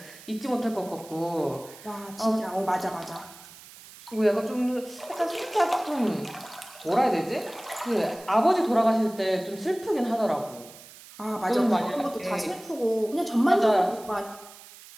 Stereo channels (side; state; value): right; noise; hiss, 19 dB below the sound